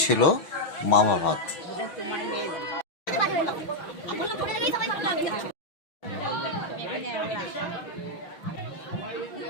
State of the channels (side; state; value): right; late; 6.0 ms